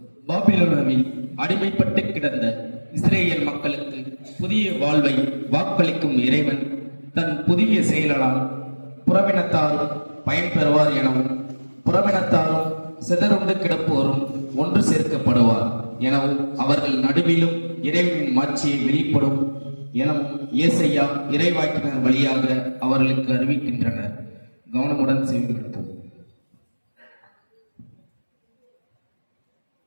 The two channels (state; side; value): inverted; both; correlation -1.00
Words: பாபிலோனாவில் அடிமைப்பட்டு கிடந்த இஸ்ரேல் மக்களுக்கு புதிய வாழ்வை வாக்களிக்கும் இறைவன் தன் புதிய செயலால் புறவினத்தாரும் பயன்பெறுவார் எனவும், புறவினத்தாரும் சிதறுண்டு கிடப்போரும் ஒன்று சேர்க்கப்படுவார் எனவும், அவர்கள் நடுவிலும் இறைவனின் மாட்சியை வெளிப்படும் எனவும் ஏசையா இறைவாக்கினர் வழியாக அவர்களுக்கு அறிவிக்கின்றனர். கவனமுடன் செவிமடுப்போம்.